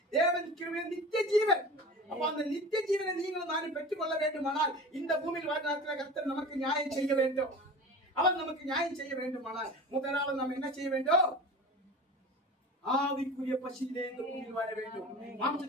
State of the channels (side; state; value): both; normal; correlation 0.35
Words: தேவன் கிருபை நித்திய ஜீவன். அப்ப அந்த நித்திய ஜீவனை நீங்களும் நானும் பெற்றுக் கொள்ள வேண்டுமானால் இந்த பூமியில் வாழ்நாட்டில் கர்த்தர் நமக்கு நியாயம் செய்ய வேண்டும். அவர் நமக்கு நியாயம் செய்ய வேண்டுமானால் முதலாவது நாம் என்ன செய்ய வேண்டும்? ஆவிக்குரிய பசியிலே இந்த பூமியில் வாழ வேண்டும்.